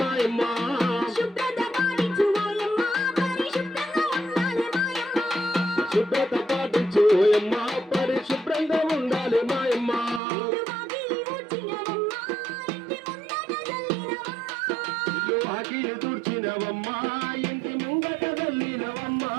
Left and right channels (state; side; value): drops out; left; at 10.2 s